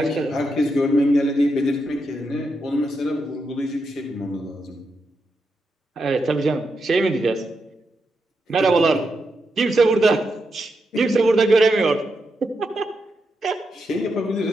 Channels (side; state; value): both; normal; correlation 0.84